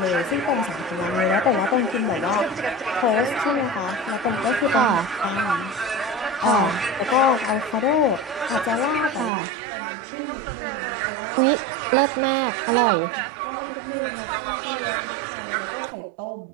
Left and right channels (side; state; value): left; drops out; at 9.3 s